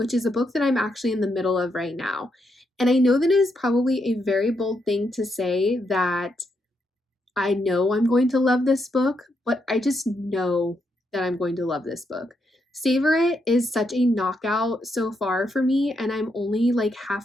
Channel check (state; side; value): normal; both; correlation 0.80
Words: is a book that I'm actually in the middle of right now. And I know that it is probably a very bold thing to say that I know I'm going to love this book, but I just know that I'm going to love this book. Savor It is such a knockout so far for me, and I'm only like